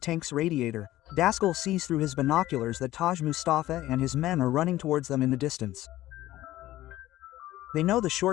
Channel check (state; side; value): quieter; right; 15.3 dB